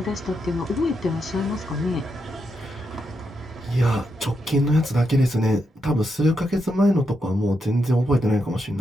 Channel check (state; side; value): normal; both; correlation 0.83